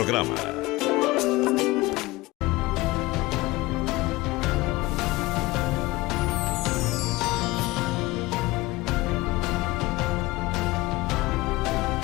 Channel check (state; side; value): quieter; right; 20.6 dB